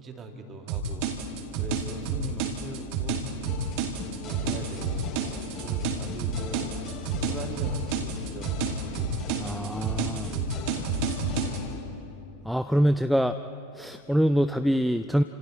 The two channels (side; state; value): both; normal; correlation 0.48